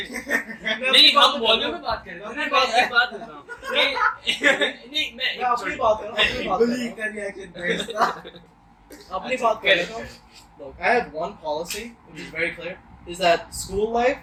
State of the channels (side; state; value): both; identical; correlation 1.00